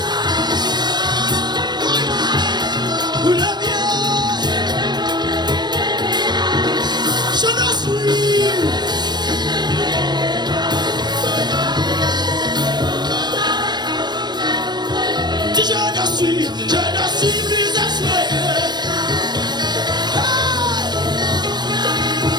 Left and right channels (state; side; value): late; left; 0.21 ms